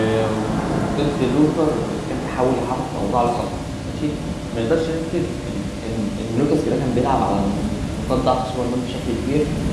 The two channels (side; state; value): both; identical; correlation 1.00